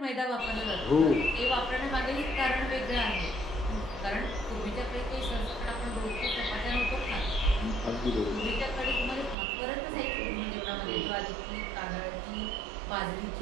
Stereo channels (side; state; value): left; drops out; at 9.3 s